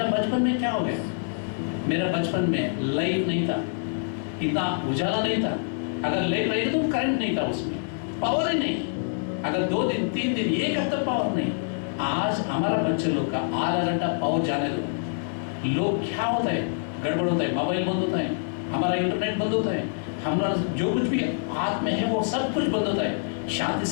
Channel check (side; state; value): right; silent; digital silence